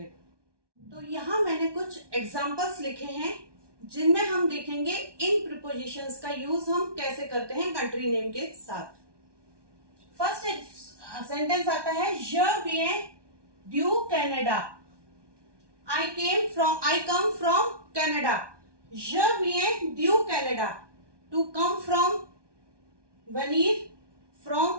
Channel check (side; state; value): left; late; 1.2 ms